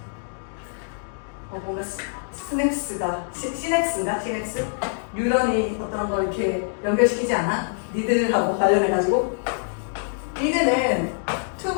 뭔가 시냅스가 시냅스? 뉴런이 어떤 걸 이렇게 연결시키지 않아? 니들하고 관련해가지고 니들은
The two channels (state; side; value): silent; right; digital silence